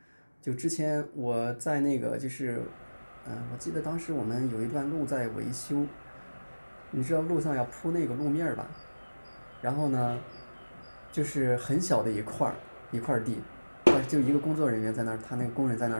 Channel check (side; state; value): both; inverted; correlation -1.00